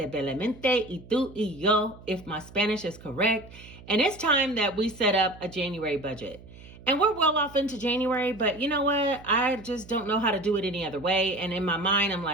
y tú y yo, if my Spanish is correct. And it's time that we set up a January budget. And we're well off into January, but you know what? I just don't know how to do it any other way. And in my mind, I'm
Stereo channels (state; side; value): noise; right; hum, 19 dB below the sound